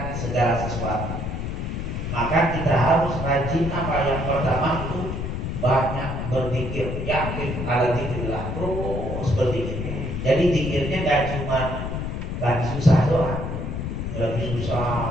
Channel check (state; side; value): noise; left; rumble, 4 dB below the sound